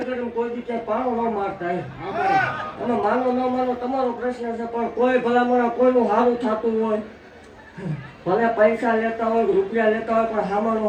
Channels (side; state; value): both; identical; correlation 1.00